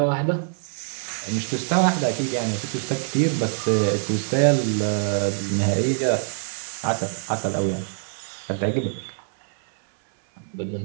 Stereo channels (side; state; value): left; silent; 62 dB below the other